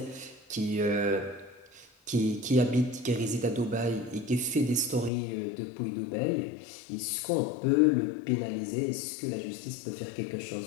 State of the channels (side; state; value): right; drops out; at 5.1 s